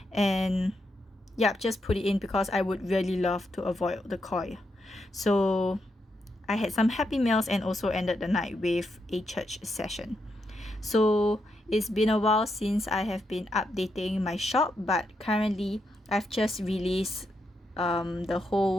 and just put it in because I would really love to avoid the koi. So I had some happy meals and also ended the night with a church session. So it's been a while since I have been updating my shop, but currently I've just released the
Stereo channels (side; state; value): both; normal; correlation 0.82